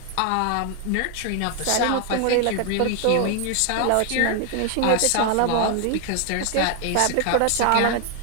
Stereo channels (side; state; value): both; different; correlation 0.00